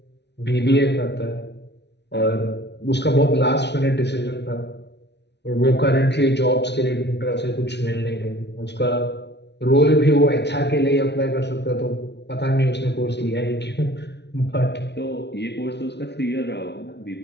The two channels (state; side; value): late; right; 0.50 ms